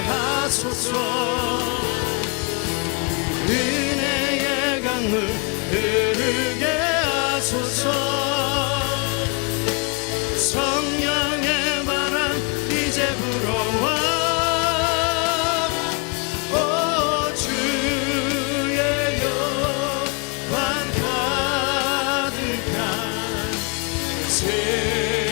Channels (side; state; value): right; quieter; 33.2 dB